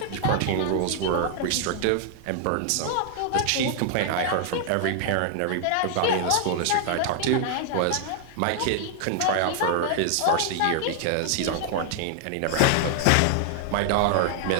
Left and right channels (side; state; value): both; different; correlation 0.00